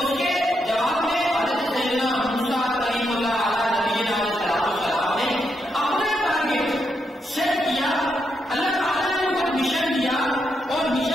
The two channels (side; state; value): both; normal; correlation 0.81